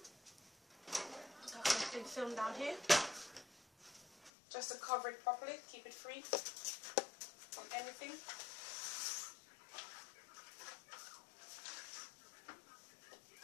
Put some cling film down here, just to cover it properly, keep it free from anything.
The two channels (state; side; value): drops out; right; at 4.3 s